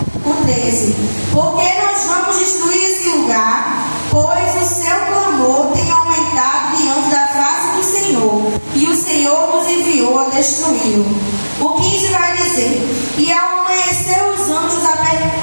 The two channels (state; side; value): inverted; both; correlation -1.00